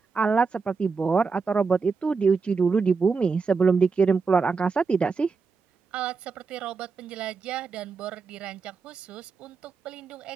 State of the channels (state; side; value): quieter; left; 4.9 dB